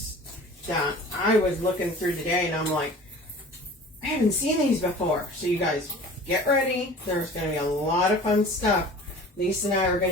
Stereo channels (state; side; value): normal; both; correlation 0.43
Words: that I was looking through today, and I'm like, I haven't seen these before. So you guys, get ready. There's going to be a lot of fun stuff Lisa and I are